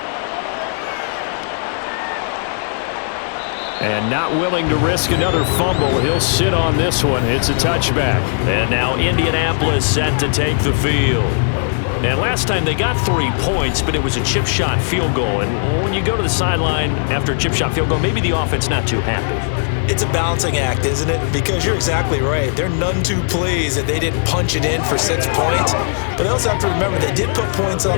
And not willing to risk another fumble, he'll sit on this one. It's a touchback. And now Indianapolis set to take the field. And last time they got 3 points, but it was a chip shot field goal. And when you go to the sideline after a chip shot field goal, maybe the offense not too happy. It's a balancing act, isn't it? Because you're exactly right. They're none too pleased that they didn't punch it in for 6 points. But they also have to remember they did put points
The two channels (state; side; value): silent; right; 58 dB below the other